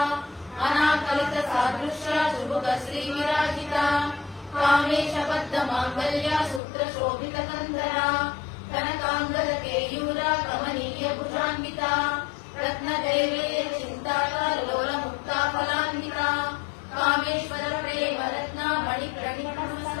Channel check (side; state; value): right; drops out; at 6.6 s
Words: अनाकलित सादृश्या सुभुग श्रीविराजिता कामेश बद्ध माङ्गल्या सूत्र शोभित कन्धरा कनकाङ्गद केयूरा कमनीय भुजान्विता रत्नदैवेय चिन्ताका लोल मुक्ता फलान्विता कामेश्वर प्रेम रत्ना